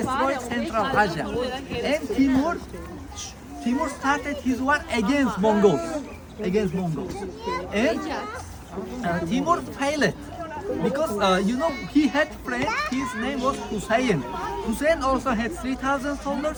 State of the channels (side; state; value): both; identical; correlation 1.00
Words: Central Asia, and Timur started his war against Mongols, and Timur failed because you know he had friend. His name was Hussein. Hussein also had 3,000